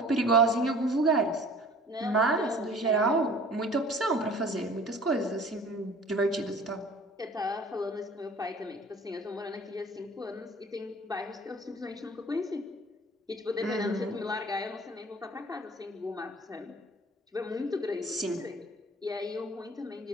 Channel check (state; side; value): normal; both; correlation 0.47